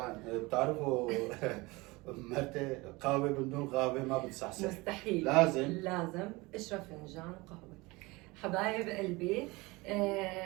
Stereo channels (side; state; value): left; quieter; 23.3 dB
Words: بتعرفوا مرتي قهوة بدون قهوة ما بتصحصح. مستحيل. لازم اشرب فنجان قهوة. حبايب قلبي،